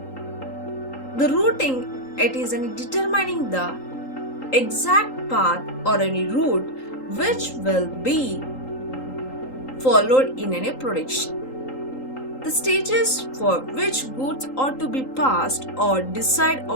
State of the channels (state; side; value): late; right; 3.8 ms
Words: The routing, it is determining the exact path or route which will be followed in production. The stages for which goods are to be passed or decide